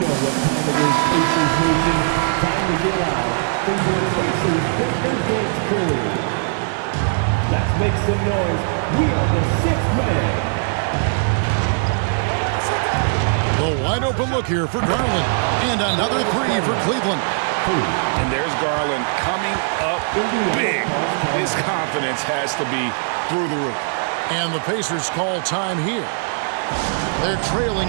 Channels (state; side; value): silent; left; 66 dB below the other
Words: what time it is, Pacers Nation. Time to get out. From your Pacers Pacers Curry. Let's make some noise. We are the 6th man. The wide open look here for Garland. And another 3 for Cleveland. And there's Garland coming up big. His confidence has to be through the roof. And the Pacers call time here. They're trailing